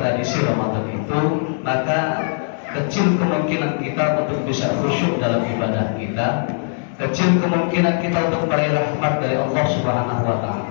Ramadan itu, maka kecil kemungkinan kita untuk bisa khusyuk dalam ibadah kita, kecil kemungkinan kita untuk meraih rahmat dari Allah Subhanahu wa taala.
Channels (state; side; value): silent; right; 66 dB below the other